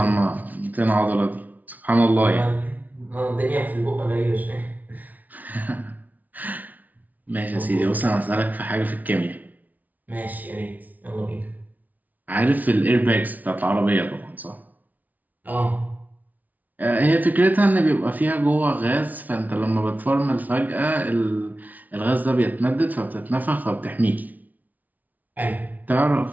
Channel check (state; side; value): late; left; 0.076 ms